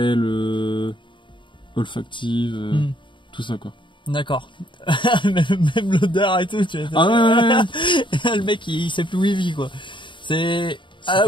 Olfactive, tout ça quoi. D'accord. même l'odeur et tout, tu vois. Ah ouais. Le mec il sait plus où il vit quoi. C'est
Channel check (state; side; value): late; right; 0.23 ms